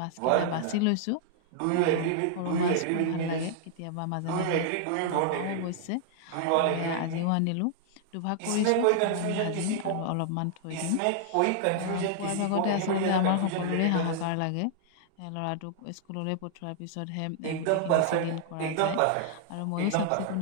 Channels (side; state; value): both; different; correlation -0.01